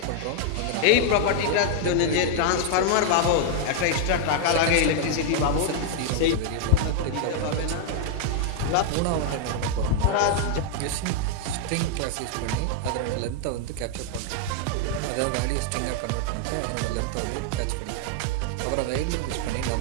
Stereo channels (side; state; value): both; different; correlation 0.00